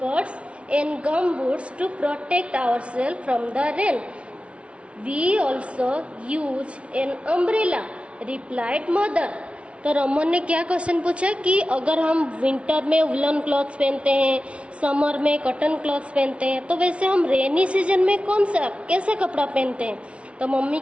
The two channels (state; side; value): late; left; 0.061 ms